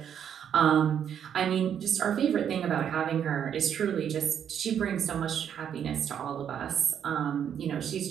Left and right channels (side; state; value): left; quieter; 8.7 dB